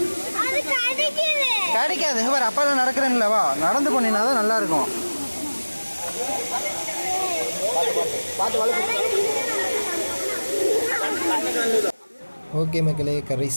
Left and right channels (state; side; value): inverted; both; correlation -1.00